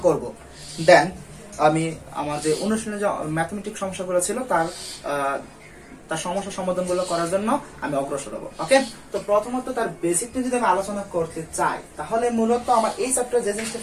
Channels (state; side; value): identical; both; correlation 1.00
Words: করব, দেন আমি আমার যে অনুশীলনে যে ম্যাথমেটিক্স সমস্যাগুলো ছিল তার সমস্যা সমাধানগুলো করার জন্য আমি অগ্রসর হব। ওকে, তো প্রথমত তার বেসিক নিয়ে যদি আমি আলোচনা করতে চাই তাহলে মূলত আমার এই চ্যাপ্টারে যে জিনিসটা